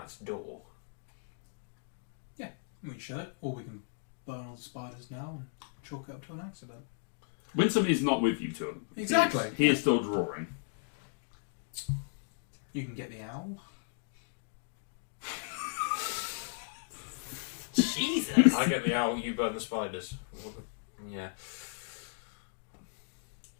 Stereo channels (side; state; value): right; silent; digital silence